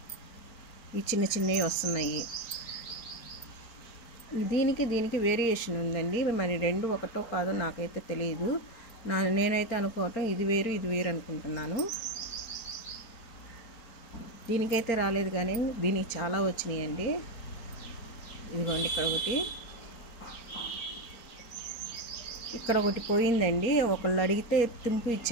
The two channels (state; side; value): late; right; 4.4 ms